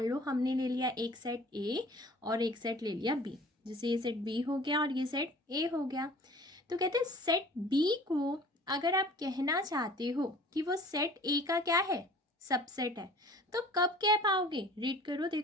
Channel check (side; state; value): both; normal; correlation 0.48